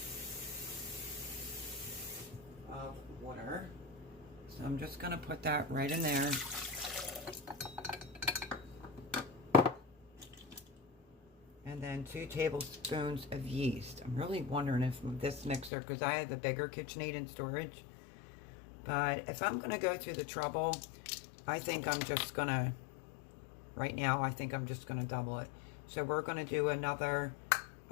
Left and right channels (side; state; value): right; drops out; at 15.7 s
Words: of water. So I'm just going to put that right in there. And then 2 tablespoons of yeast. I'm really wondering if this mixer, because I have a bigger KitchenAid in storage. But if I'm going to go through the trouble, I think I'm just going to, right now, I think I'm just going to double it. So we're going to do another